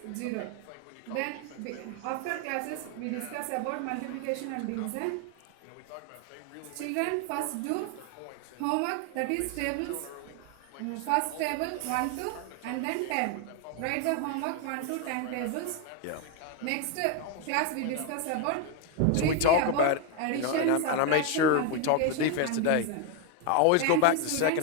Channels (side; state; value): both; different; correlation 0.01